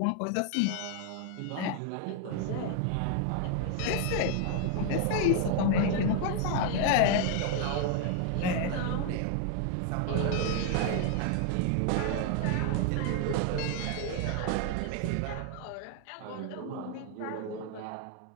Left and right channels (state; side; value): different; both; correlation 0.00